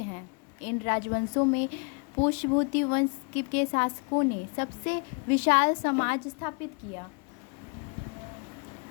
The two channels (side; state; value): right; quieter; 36.6 dB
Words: इन राजवंशों में पुष्यभूति वंश के शासकों ने सबसे विशाल समाज स्थापित किया।